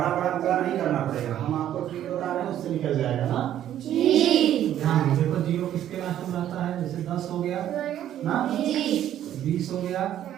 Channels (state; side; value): quieter; left; 11.4 dB